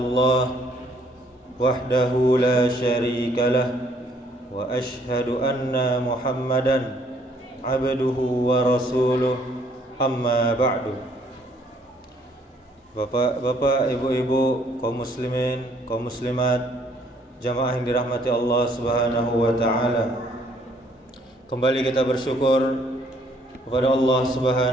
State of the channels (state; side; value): normal; both; correlation 0.64